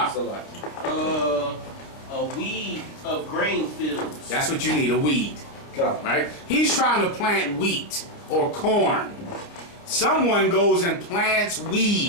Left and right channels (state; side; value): late; right; 29 ms